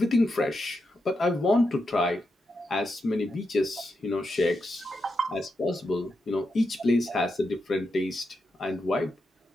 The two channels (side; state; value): both; normal; correlation 0.85